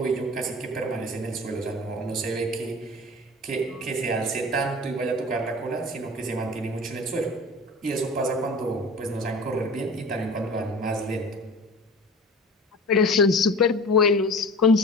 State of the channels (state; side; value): normal; both; correlation 0.38